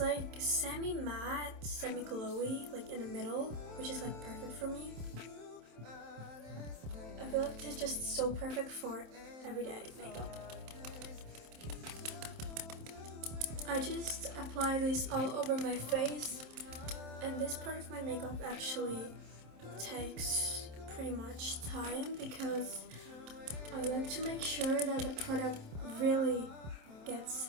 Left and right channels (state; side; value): late; left; 27 ms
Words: semi-matte, semi-glowy, like in the middle, which is like perfect for me. I feel like this is just so perfect for everyday makeup. I just apply this all over my face, and this part of my makeup actually takes pretty much time because I like to make sure that the product really gets